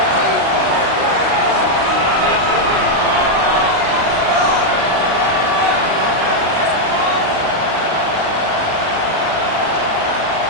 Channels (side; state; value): left; late; 38 ms